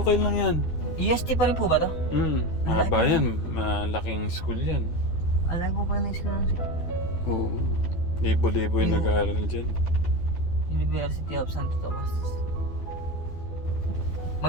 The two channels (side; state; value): right; late; 12 ms